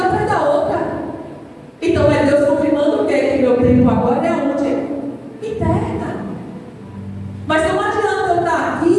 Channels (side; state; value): both; identical; correlation 1.00